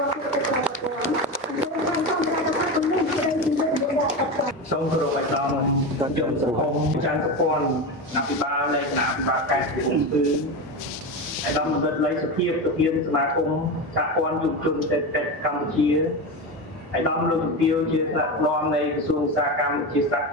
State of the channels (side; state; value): both; normal; correlation 0.20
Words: ឌ្ឍសេដ្ឋកិច្ចក្រៅប្រព័ន្ធសូមគោរពឲ្យដល់ខ្ញុំសង្គមចាន់សព័ន្ធអភិបាលនៃគណៈអភិបាលខេត្តកំពង់ស្ពឺឯកឧត្តមបណ្ឌិតលេខសុភាពប្រធានសមាគមសហព័ន្ធយុវជនសេដ្ឋកិច្ចកម្ពុជាឯកឧត្តមលោកជំទាវជាថ្នាក់ដឹកនាំនៃក្រសួងឧស្សាហកម្មវិទ្យាសាស្ត្រ